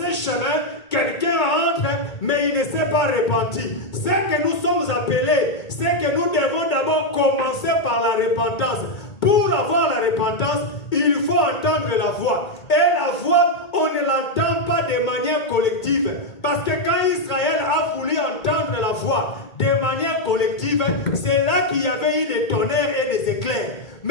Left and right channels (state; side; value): late; right; 2.2 ms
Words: chemin, quelqu'un entre, mais il ne s'est pas repenti. Ce que nous sommes appelés, c'est que nous devons d'abord commencer par la repentance. Pour avoir la repentance, il faut entendre la voix. Et la voix, on ne l'entend pas de manière collective. Parce que quand Israël a voulu entendre la voix de manière collective, c'est là qu'il y avait eu des tonnerres et des éclairs.